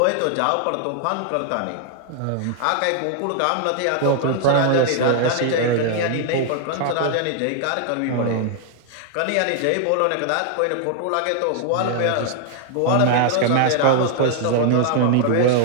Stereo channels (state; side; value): different; both; correlation 0.00